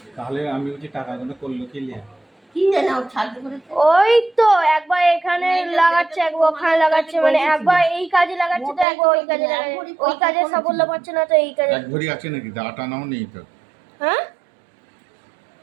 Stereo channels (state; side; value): drops out; left; at 8.8 s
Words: তাহলে আমি বলছি টাকাগুলো করলো কি লিয়া? কি জানি ও ছাড়তে করেছে। ওই তো একবার এখানে লাগাচ্ছে, একবার ওখানে লাগাচ্ছে, মানে একবার এই কাজে লাগাচ্ছে তো একবার ওই কাজে লাগাচ্ছে। ওই কাজে সাফল্য পাচ্ছে না তো এই কাজে। এক ভরি আছে নাকি? দাটা নাও নেই তো। হ্যাঁ,